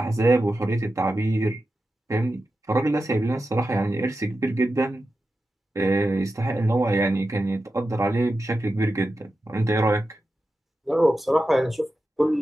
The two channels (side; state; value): both; normal; correlation 0.91